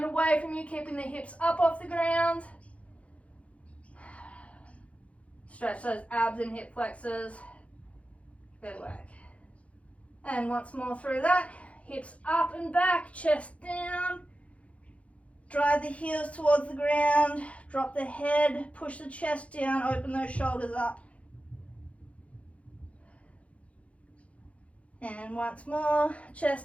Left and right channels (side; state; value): right; late; 0.064 ms